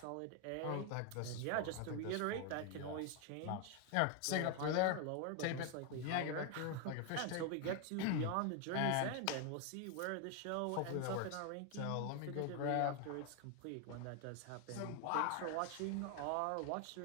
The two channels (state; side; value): different; both; correlation 0.01